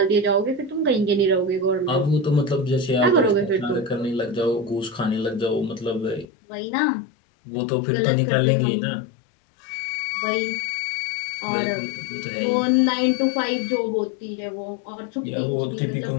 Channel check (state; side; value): drops out; right; at 6.2 s